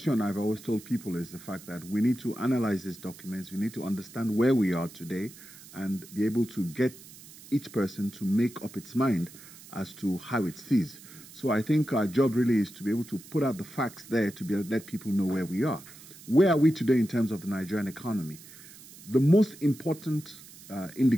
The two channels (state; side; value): noise; right; hiss, 19 dB below the sound